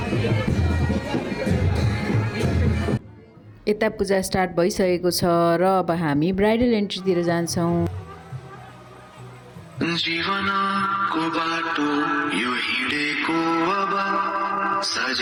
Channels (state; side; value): identical; both; correlation 1.00